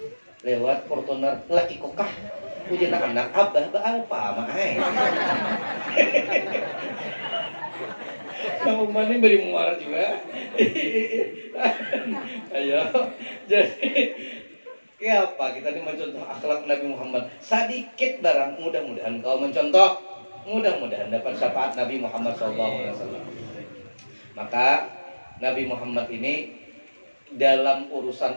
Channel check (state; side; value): inverted; both; correlation -1.00